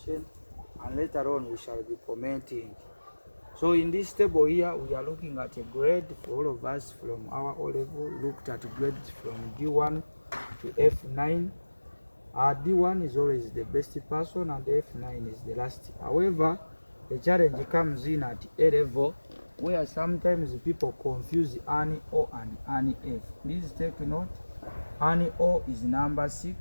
and later on we shall be commenting. So in this table here, we are looking at a grade for all of us from our O level, looked at grades from D1 to F9. D1 is always the best person and F9 is the last. However, the challenge comes in at A level, where sometimes people confuse ANI O and ANI F. Please take note, ANI O is number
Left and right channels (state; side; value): inverted; both; correlation -1.00